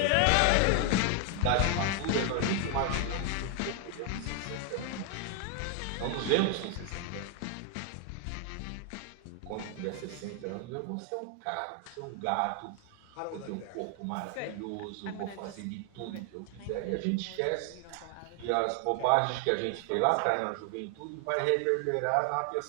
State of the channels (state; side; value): different; both; correlation 0.00